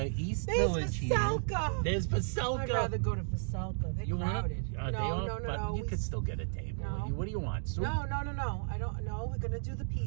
the East There's Village Veselka. here. There's Veselka. I'd rather go to Veselka. They're crowded. No. You could still get a table. No. What do you want? Soup? No. I don't know. We're gonna do the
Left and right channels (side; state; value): left; silent; digital silence